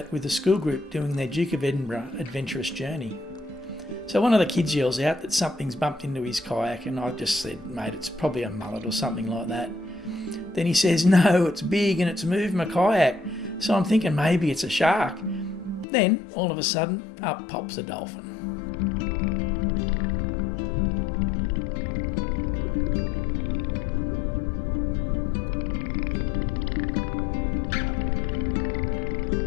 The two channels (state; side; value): drops out; right; at 15.9 s